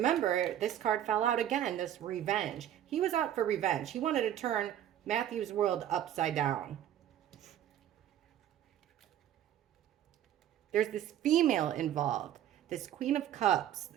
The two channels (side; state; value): left; quieter; 11.1 dB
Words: this card fell out again, this revenge. He was out for revenge. He wanted to turn Matthew's world upside down. There's this female involved, this Queen of Cups